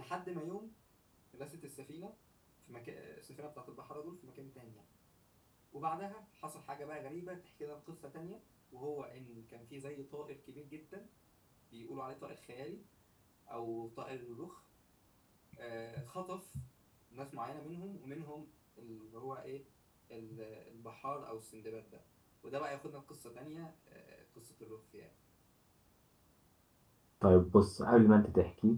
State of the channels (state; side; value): identical; both; correlation 1.00